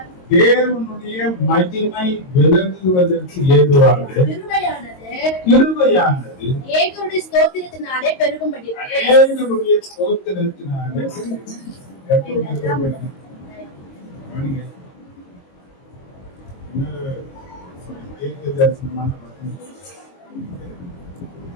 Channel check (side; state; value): right; late; 22 ms